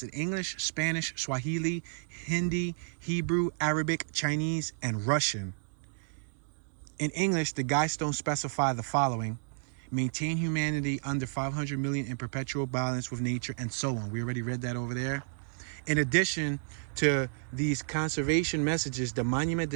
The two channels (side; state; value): left; silent; digital silence